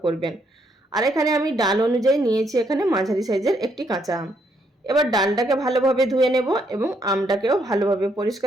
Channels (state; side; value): normal; both; correlation 0.73